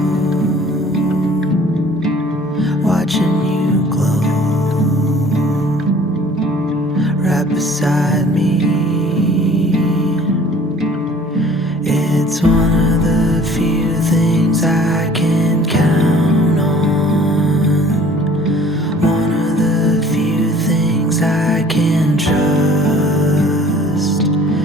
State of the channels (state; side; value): normal; both; correlation 0.51